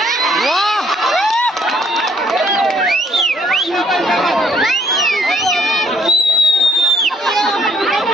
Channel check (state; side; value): normal; both; correlation 0.65